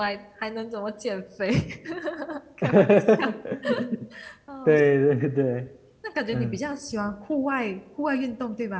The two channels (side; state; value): both; identical; correlation 1.00